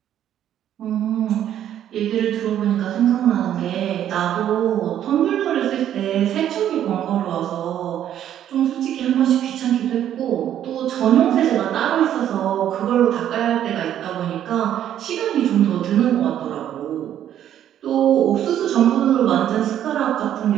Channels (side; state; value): left; quieter; 10.8 dB